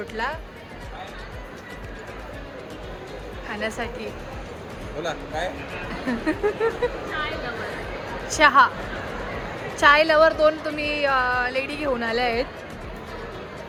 खाण्यासाठी. बोला काय? चहा, चाय लवर 2 तुम्ही लेडी घेऊन आल्या आहेत.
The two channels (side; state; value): both; identical; correlation 1.00